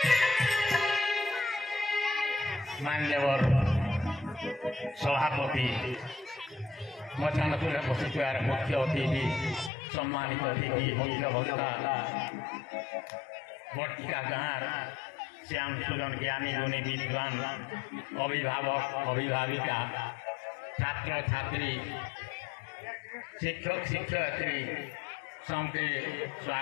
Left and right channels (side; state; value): right; drops out; at 9.7 s